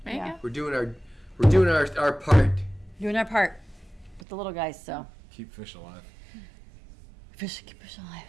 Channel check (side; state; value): left; drops out; at 4.2 s